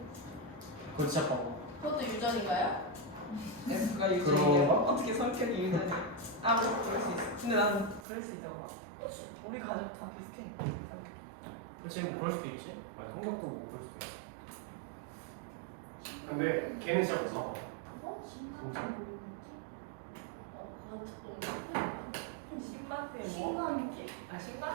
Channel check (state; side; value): drops out; left; at 8.1 s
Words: 그거 진짜 봐봐. 그것도 유전인가요? F가 유전이야. 어떻게 성격이 유전이야? 아, 뭐 그럴 수 있어. 근데 난 그럴 수 있잖아. 우리 가족 다 비슷해. 지금 그럴 수도 있지. 아니, 성격도 그럴 수도 있어. 근데 걔는 진짜 무서워. 어? 진짜. 그건 조금 신반대 뭐? 신감기. 아,